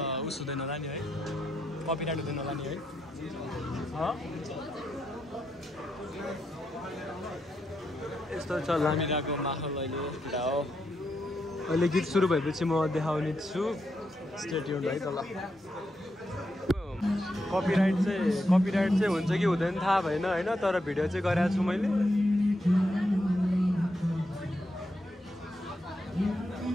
उस हुँदैन होला नि है कपिराइट हुँदैन होला नि है यस्तो छ लामिराको माहौल अहिले केटा हो अहिले गीत सुरु भएपछि म देखाउने छु स्टे ट्युन्ड है तल कपिराइट चाहिँ हुन्छ कि हुँदैन थाहा भएन होइन तर भिडियो चाहिँ गरेको छु मैले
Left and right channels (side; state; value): both; normal; correlation 0.83